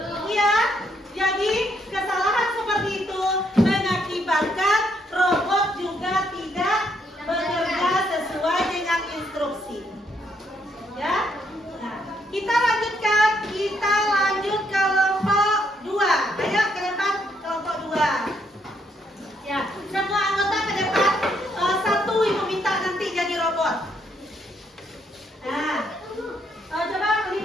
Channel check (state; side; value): normal; both; correlation 0.73